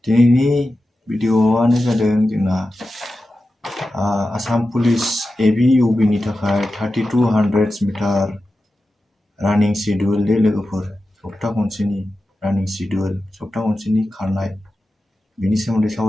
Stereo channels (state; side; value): normal; both; correlation 0.92